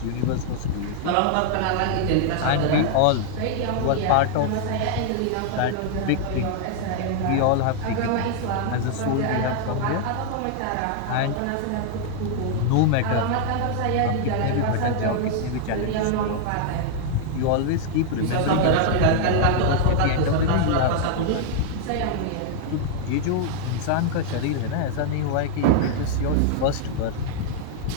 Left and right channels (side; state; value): both; different; correlation 0.00